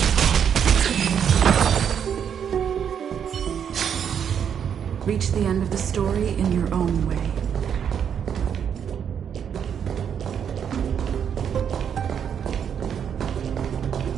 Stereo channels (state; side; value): quieter; left; 8.1 dB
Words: Reach the end of the story in your own way.